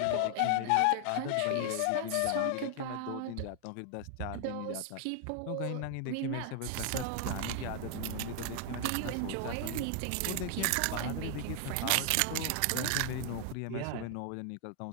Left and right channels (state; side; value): different; both; correlation 0.00